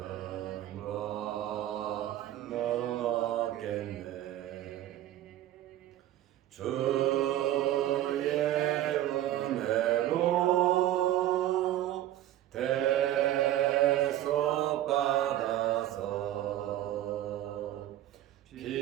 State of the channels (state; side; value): quieter; left; 13.3 dB